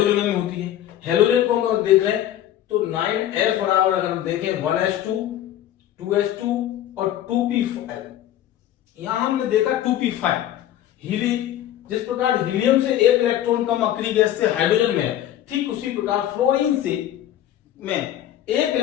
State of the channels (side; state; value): right; quieter; 12.1 dB